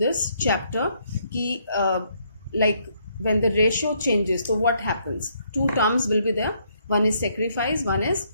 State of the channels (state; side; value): inverted; both; correlation -0.71